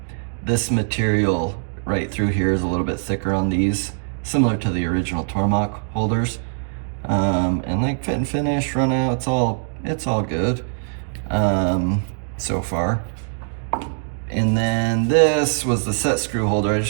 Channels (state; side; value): silent; left; digital silence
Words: this material right through here is a little bit thicker on these, similar to the original Tormach holders. And like fit and finish, run out, it's all good so far. And then this was the set screw holder. I